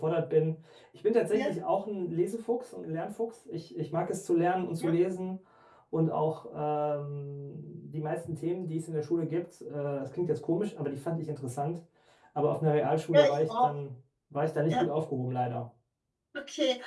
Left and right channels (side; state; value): both; identical; correlation 1.00